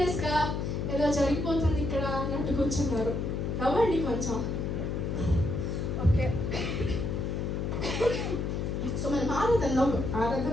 ఏదో జరిగిపోతుంది ఇక్కడ అన్నట్టు కూర్చున్నారు. నవ్వండి కొంచెం. ఓకే, సో మనం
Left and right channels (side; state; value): left; noise; hum, 1 dB below the sound